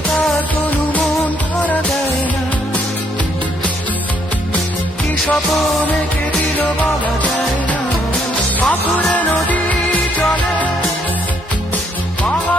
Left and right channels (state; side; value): normal; both; correlation 0.71